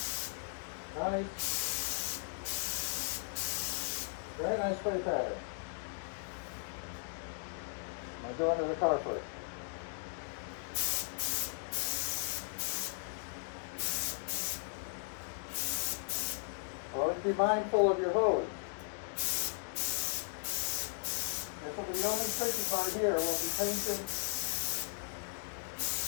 Nice. Very nice spray pattern. I'll go under the car first. Always be mindful of your hose. This will be the only tricky part here. We'll be painting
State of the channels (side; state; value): right; silent; digital silence